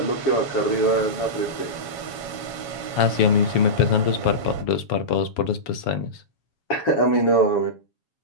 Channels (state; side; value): late; right; 7.2 ms